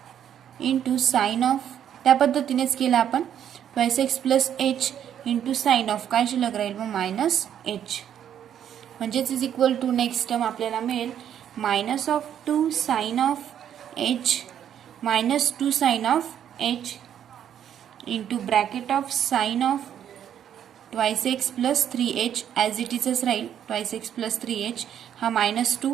into sine of त्या पद्धतीनेच केलं आपण twice x plus h into sine of काय शिल्लक राहील मग मायनस h. म्हणजेच is equal to next term आपल्याला मिळेल minus of 2 sine of h minus 2 sine of h into bracket of sine of twice x plus 3h as it इजच राहील twice x plus 3h हा minus 2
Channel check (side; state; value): left; quieter; 9.7 dB